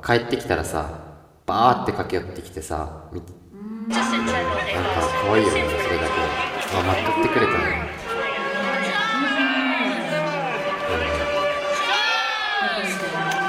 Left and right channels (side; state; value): both; identical; correlation 1.00